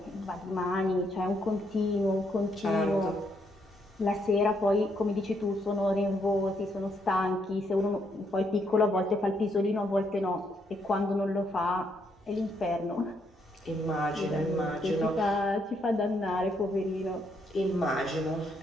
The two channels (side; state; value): both; normal; correlation 0.74